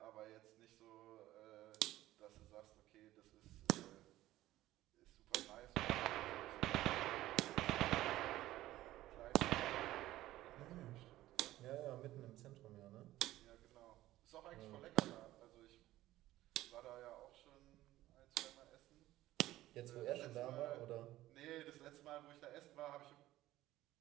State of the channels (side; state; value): left; quieter; 15.4 dB